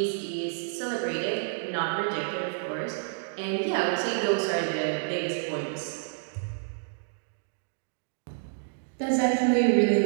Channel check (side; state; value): left; silent; digital silence